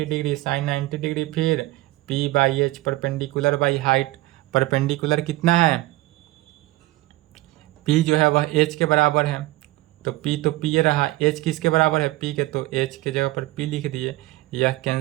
डिग्री, साइन 90 डिग्री, फिर P/H perpendicular by height. Perpendicular कितना है, P जो है वह H के बराबर है, तो P तो P ये रहा, H किसके बराबर है, P के, तो H के जगह पर P लिख दिए, यह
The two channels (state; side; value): quieter; left; 18.7 dB